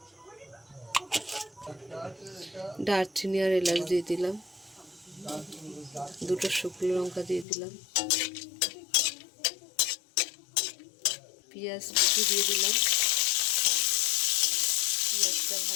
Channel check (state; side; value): drops out; right; at 7.5 s